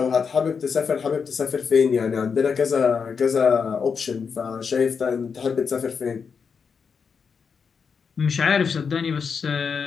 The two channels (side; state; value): right; quieter; 6.0 dB